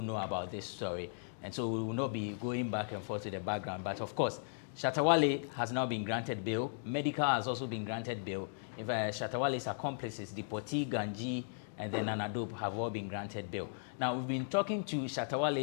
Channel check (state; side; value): silent; right; digital silence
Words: know about this story. And so we will not be going back and forth to the background. But of course, Shatta Wale has now been granted bail. Medikal has also been granted bail. If Shatta Wale's accomplices, Dipoti, Ganji, and then Nana Dope have all been granted bail. Now, we've been talking to Shatta